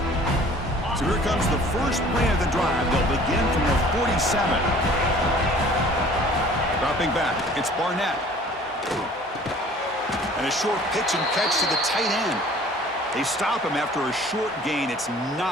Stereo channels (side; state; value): both; normal; correlation 0.50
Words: So here comes the first play of the drive. They'll begin from the 47. Dropping back, it's Barnett. And a short pitch and catch to the tight end. They stop him after a short gain. It's